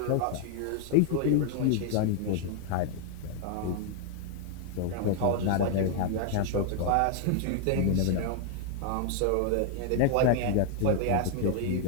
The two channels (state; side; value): different; both; correlation 0.00